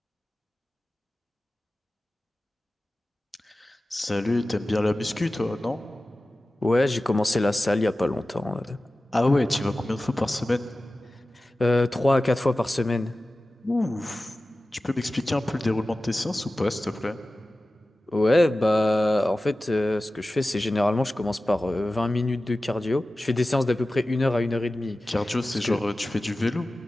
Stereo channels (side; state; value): both; normal; correlation 0.96